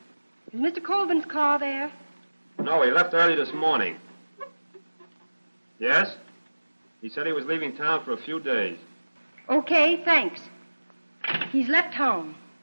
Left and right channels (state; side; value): inverted; both; correlation -1.00